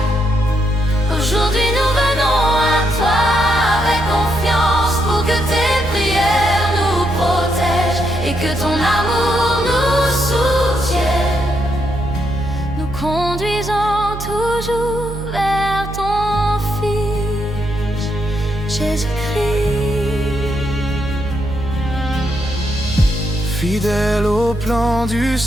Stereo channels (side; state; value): right; noise; hum, 9 dB below the sound